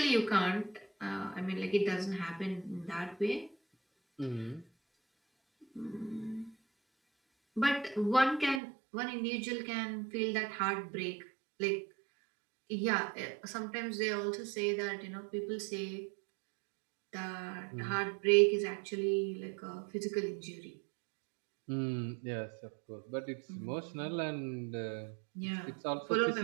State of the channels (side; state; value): left; drops out; at 8.6 s